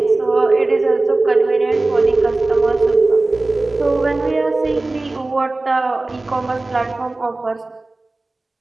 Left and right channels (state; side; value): quieter; left; 3.1 dB